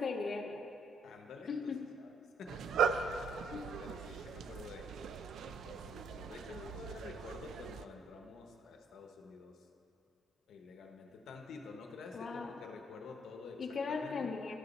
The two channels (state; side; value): normal; both; correlation 0.68